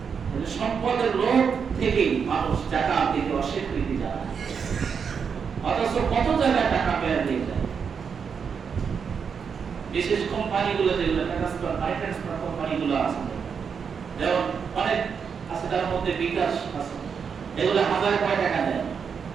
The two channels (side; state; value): left; quieter; 6.4 dB